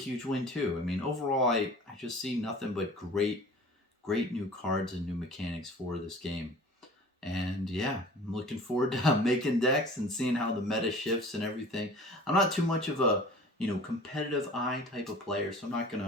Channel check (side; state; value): both; normal; correlation 0.43